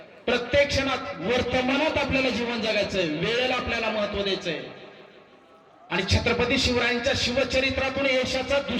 प्रत्येक क्षणात वर्तमानात आपल्याला जीवन जगायचंय, वेळेला आपल्याला महत्व द्यायचंय. आणि छत्रपती शिवरायांच्या शिवचरित्रातून यशाचा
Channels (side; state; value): both; identical; correlation 1.00